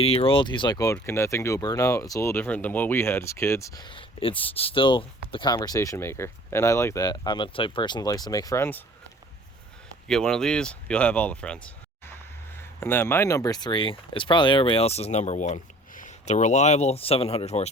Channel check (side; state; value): both; normal; correlation 0.50